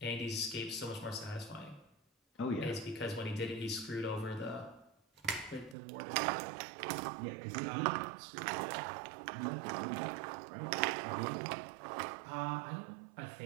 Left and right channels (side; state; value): left; drops out; at 5.8 s